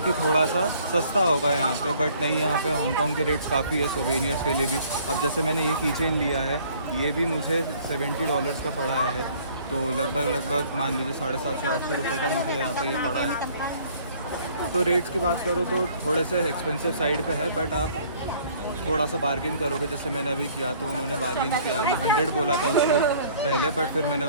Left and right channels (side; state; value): both; inverted; correlation -0.57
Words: कि थोड़ा सा सस्ता होगा यहाँ पे, बट नहीं, यहाँ पे हांगकांग के रेट्स काफ़ी है सोवेनियर्स के लिए भी। अब जैसे मैंने ये कीचेन लिया है, ये भी मुझे $70 का पड़ा है, तो लगभग मान लीजिए 750-800 रुपये का मुझे यहाँ पे ये पड़ा है। तो रेट्स की बात करो तो थोड़े से एक्सपेंसिव साइड पे है, बट आप थोड़ा सा बार्गेन करोगे, जैसे मैंने अभी किया तो उन्होंने बार्गेन किया, अभी 100 बोला था उसने पहले, बट फिर मैंने